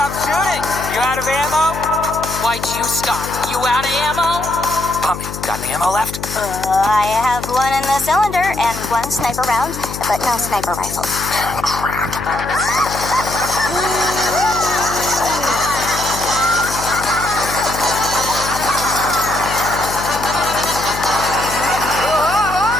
shooting? You out of ammo? Why'd you stop? You out of ammo? Pomni, got any ammo left? I have one in the cylinder and one sniper round, but no sniper rifle.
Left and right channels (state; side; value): noise; left; hum, 9 dB below the sound